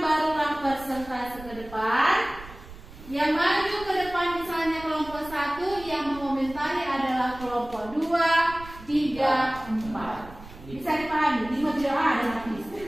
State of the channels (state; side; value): noise; right; rumble, 17 dB below the sound